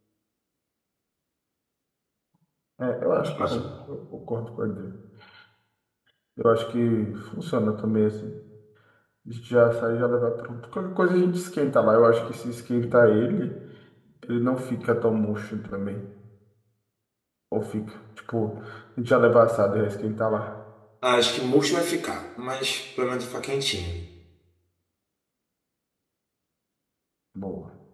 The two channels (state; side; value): identical; both; correlation 1.00